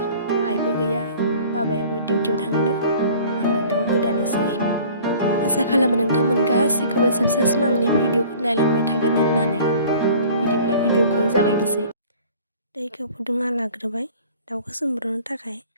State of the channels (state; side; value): inverted; both; correlation -0.48